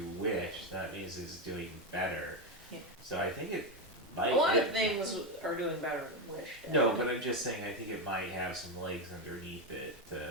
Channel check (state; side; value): normal; both; correlation 0.10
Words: Wish, that means it's doing better. Yeah. So I think it might... A lot of things are doing better than Wish did. No, but I'm just saying I think it might have some legs underneath it.